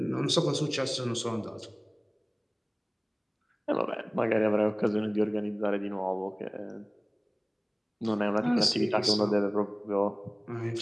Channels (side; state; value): both; identical; correlation 1.00